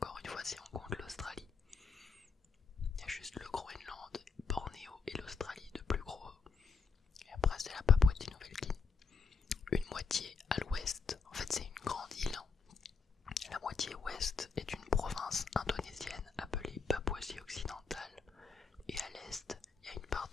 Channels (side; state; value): right; quieter; 5.2 dB